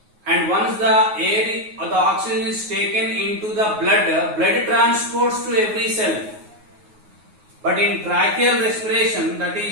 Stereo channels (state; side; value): late; left; 9.4 ms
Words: And once the air or the oxygen is taken into the blood transports to every cell. But in tracheal respiration, that